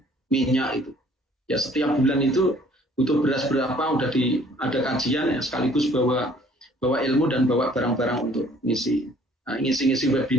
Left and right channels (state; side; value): normal; both; correlation 0.57